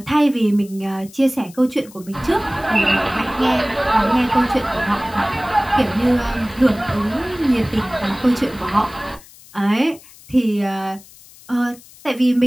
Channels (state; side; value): noise; left; hiss, 22 dB below the sound